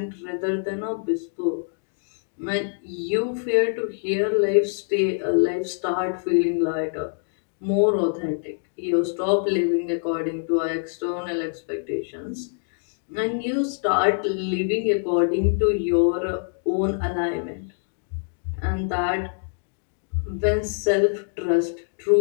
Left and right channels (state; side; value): silent; right; digital silence